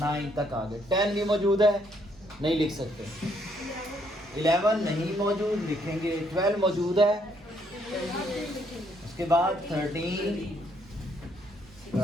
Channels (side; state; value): both; normal; correlation 0.70